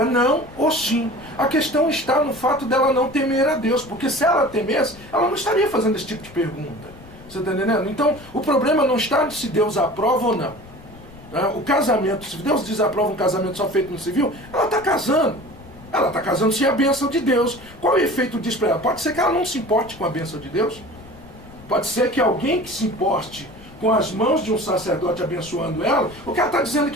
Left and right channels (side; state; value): left; noise; rumble, 20 dB below the sound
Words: não ou sim. A questão está no fato dela não temer a Deus, porque se ela temesse, ela não estaria fazendo esse tipo de pergunta. Você está entendendo? Então o problema não está se Deus aprova ou não. O casamento, se Deus desaprova um casamento só feito no civil, ela está casando. Ela está casando sem a bênção de Deus. Qual é o efeito disso para ela? Pode ser que ela não se importe com a bênção de Deus. Pode ser que alguém que se importe com as mãos de um sacerdote abençoando ela, o que ela está dizendo